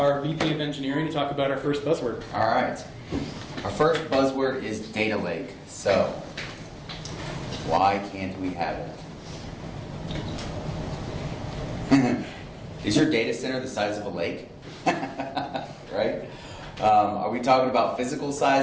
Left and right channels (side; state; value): both; identical; correlation 1.00